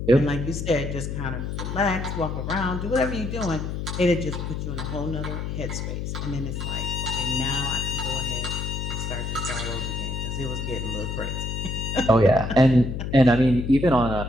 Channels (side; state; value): left; noise; hum, 4 dB below the sound